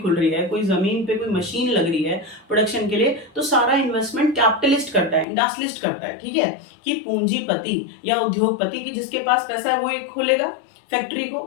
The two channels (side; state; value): right; drops out; at 5.2 s